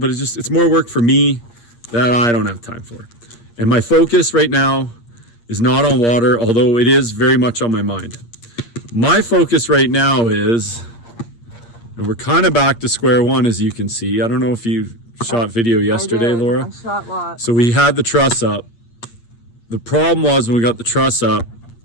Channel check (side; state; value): right; late; 8.6 ms